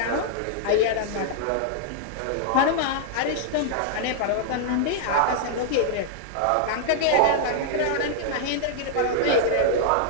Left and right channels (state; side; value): different; both; correlation -0.01